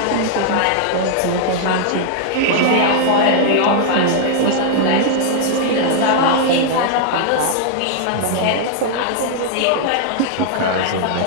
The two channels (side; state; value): both; different; correlation -0.01